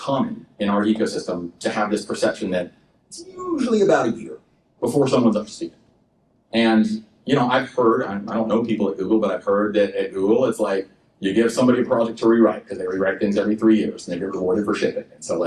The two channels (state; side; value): identical; both; correlation 1.00